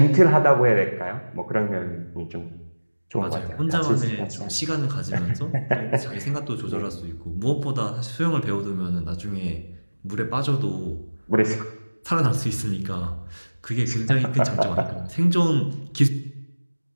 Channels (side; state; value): both; inverted; correlation -1.00